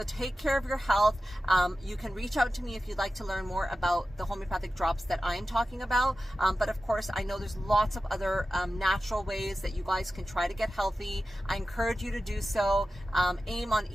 take care of your health. You can reach out to me if you'd like to learn more about the homeopathic drops that I'm talking about. But of course, I know there's lots of other natural ways that you guys can try to get healthy. I encourage you to do so. Aim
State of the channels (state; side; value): normal; both; correlation 0.94